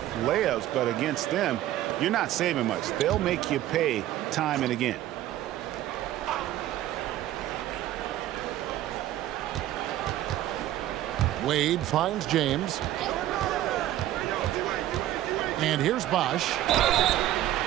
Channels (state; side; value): quieter; left; 13.7 dB